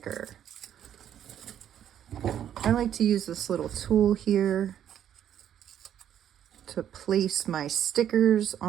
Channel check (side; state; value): left; quieter; 10.1 dB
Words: I like to use this little tool here to place my stickers